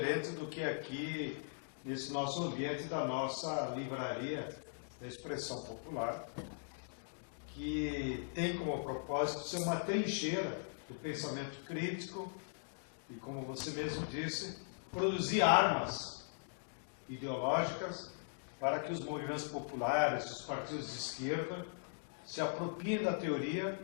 do que aqui, nesse nosso ambiente da nossa livraria da expressão popular, que tem como propósito ser uma trincheira do pensamento crítico e, como você mesmo disse, produzir armas ideológicas para que os movimentos populares, os partidos de esquerda, se apropriem da teoria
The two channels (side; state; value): right; silent; digital silence